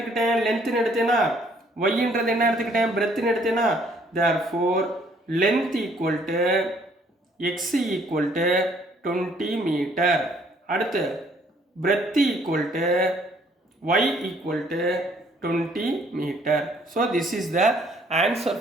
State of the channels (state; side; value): normal; both; correlation 0.63